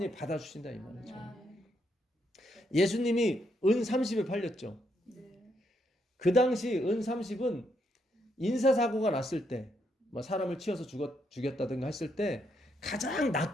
받아주신다 이 말이죠. 예수님이 은 30에 팔렸죠. 그 당시 은 30은 인사사고가 났을 때, 뭐 사람을 치어서 죽였다든가 했을 때 가장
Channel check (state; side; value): normal; both; correlation 0.77